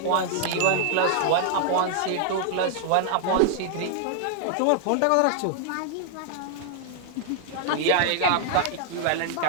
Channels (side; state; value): both; different; correlation 0.00